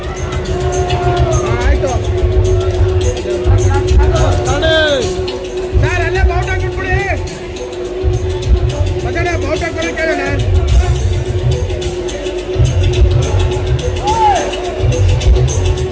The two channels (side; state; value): both; identical; correlation 1.00